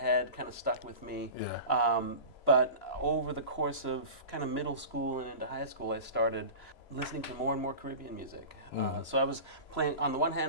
kind of stuck with me. Yeah. But over the course of kind of middle school and into high school, I started listening to more and more Caribbean music. So I was playing, on the one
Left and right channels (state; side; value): late; right; 3.0 ms